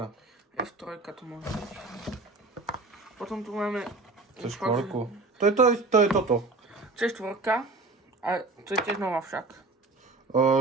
F3 to môže byť. Potom tu máme... To je štvorku. To je toto. To je štvorka. A to je tiež nová však.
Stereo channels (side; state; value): left; quieter; 3.5 dB